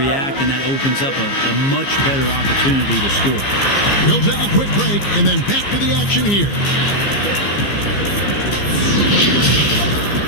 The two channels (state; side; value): late; right; 15 ms